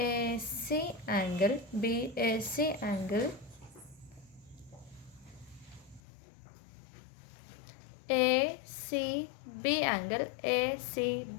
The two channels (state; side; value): drops out; right; at 6.0 s